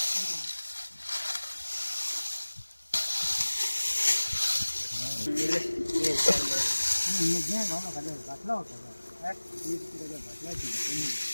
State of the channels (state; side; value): inverted; both; correlation -1.00